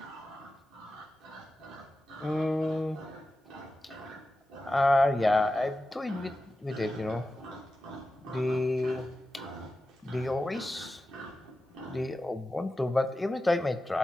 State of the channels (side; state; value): both; normal; correlation 0.92